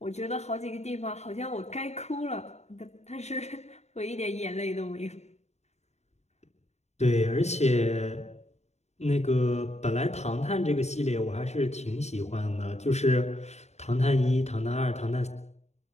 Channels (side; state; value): right; late; 0.32 ms